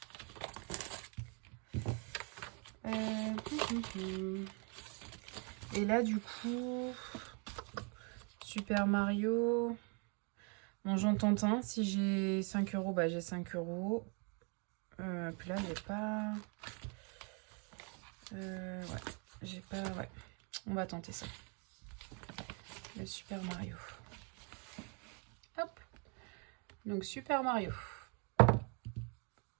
Et là du coup, Super Mario. Bon, j'en tente un. Si j'ai 5 euros, bah j'ai 5 euros. Puis là, j'ai pas... ouais, j'ai pas... Ouais. On va tenter ça. Le Super Mario. Hop. Donc, Super Mario.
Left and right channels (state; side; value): quieter; left; 36.2 dB